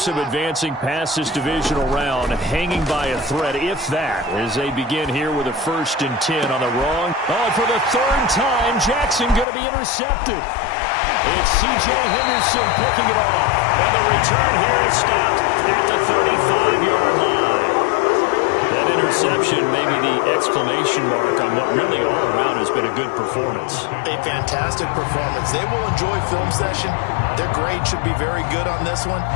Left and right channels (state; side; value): drops out; right; at 9.5 s